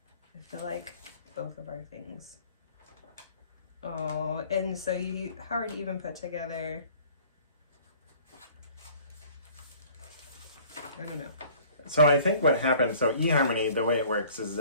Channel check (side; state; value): both; inverted; correlation -0.52